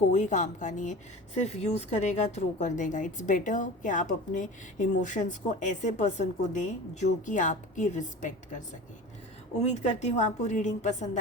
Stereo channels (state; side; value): normal; both; correlation 0.35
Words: काम का नहीं है। सिर्फ यूज़ करेगा, थ्रो कर देगा। इट्स बेटर कि आप अपने इमोशंस को ऐसे पर्सन को दें जो कि आपकी रिस्पेक्ट कर सके। उम्मीद करती हूँ आपको रीडिंग पसंद